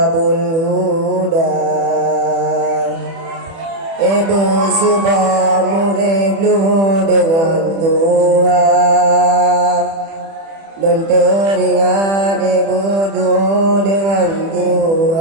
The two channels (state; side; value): late; left; 30 ms